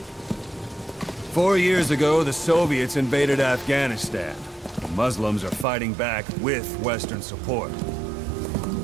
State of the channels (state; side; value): drops out; left; at 5.7 s